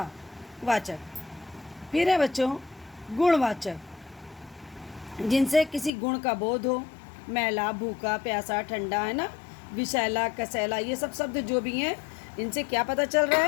वाचक। फिर है बच्चों गुणवाचक, जिनसे किसी गुण का बोध हो, मैला, भूखा, प्यासा, ठंडा, है ना, विषैला, कसैला, ये सब शब्द जो भी हैं, इनसे क्या पता चल रहा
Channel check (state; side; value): drops out; right; at 5.9 s